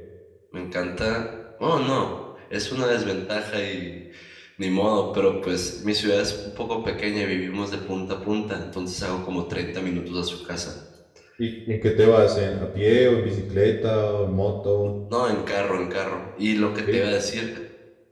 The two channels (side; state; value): both; identical; correlation 1.00